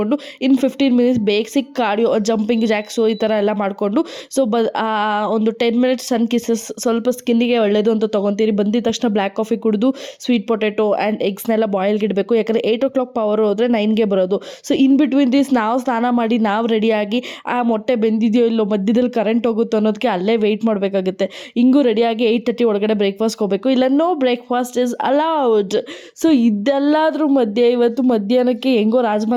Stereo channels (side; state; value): both; identical; correlation 1.00